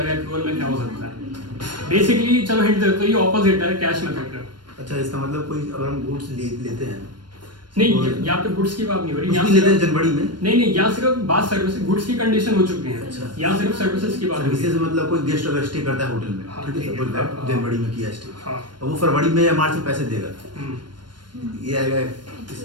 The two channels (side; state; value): left; late; 0.71 ms